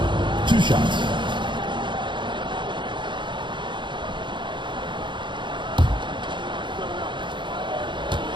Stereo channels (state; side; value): late; left; 0.23 ms